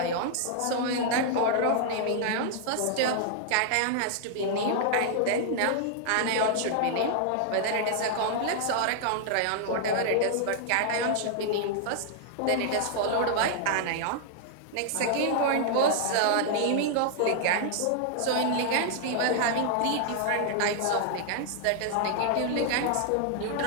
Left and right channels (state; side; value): different; both; correlation -0.01